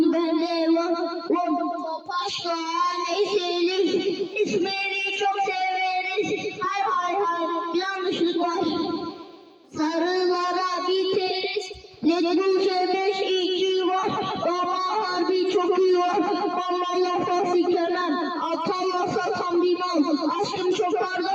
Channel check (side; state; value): both; identical; correlation 1.00